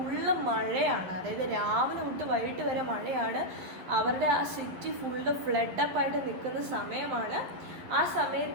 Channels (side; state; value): left; late; 11 ms